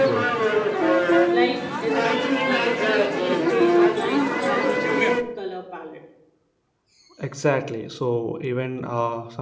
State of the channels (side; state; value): both; identical; correlation 1.00